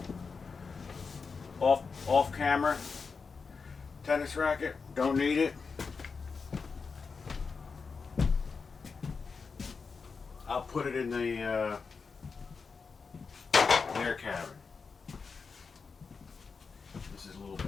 Off camera. Tennis racket, don't need it. I'll put it in the air cabin. This is a little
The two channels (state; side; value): quieter; right; 5.0 dB